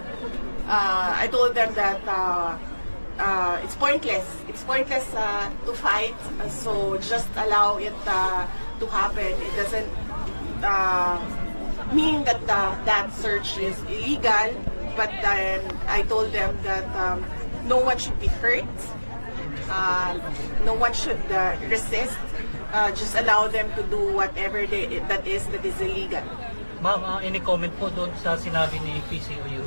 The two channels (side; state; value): both; inverted; correlation -1.00